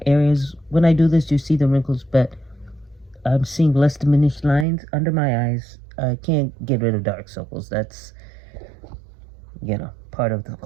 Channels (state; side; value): drops out; left; at 4.7 s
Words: areas, when I do this, you see the wrinkles, but I'm seeing less diminished lines under my eyes. I can't get rid of dark circles. That's, part of the